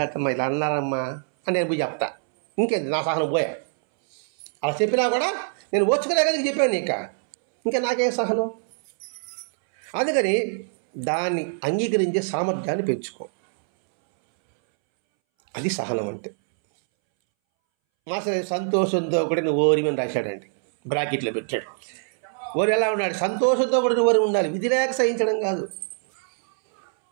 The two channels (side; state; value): left; silent; 63 dB below the other